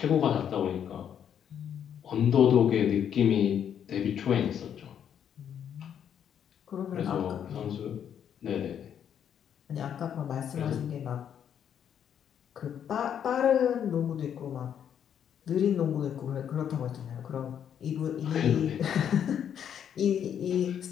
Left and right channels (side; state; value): right; quieter; 8.9 dB